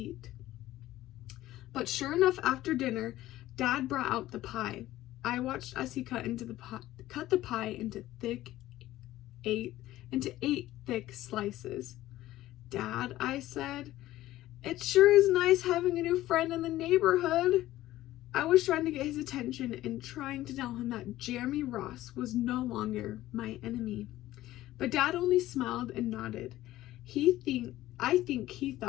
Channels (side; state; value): right; quieter; 15.3 dB